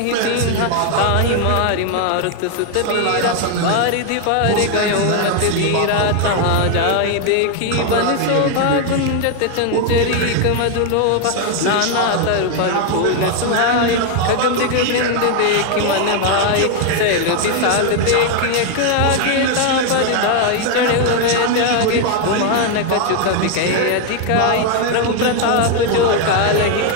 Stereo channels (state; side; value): different; both; correlation 0.00